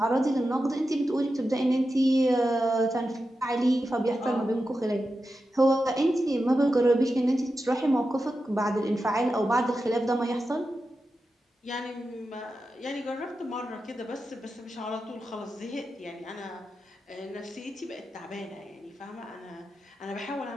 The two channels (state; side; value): normal; both; correlation 0.90